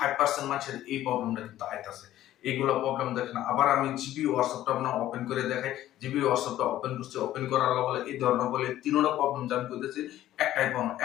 মানুষের এই প্রবলেমটা কিন্তু আইতাছে। এইগুলো প্রবলেম দেখেন। আবার আমি জিবি হোয়াটসঅ্যাপটা আপনার ওপেন করে দেখাই। জিবি হোয়াটসঅ্যাপটা ওপেন করছি, ওপেন করার বলে এই ধরনের বলে তিনটা প্রবলেম আমি করতেছি। একটাই প্রবলেম,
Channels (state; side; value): quieter; right; 13.4 dB